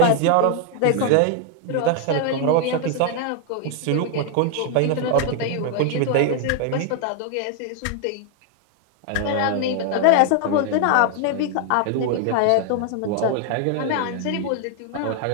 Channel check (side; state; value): both; different; correlation 0.00